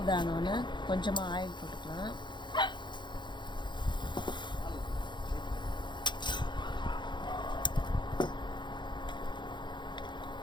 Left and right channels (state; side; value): late; right; 0.22 ms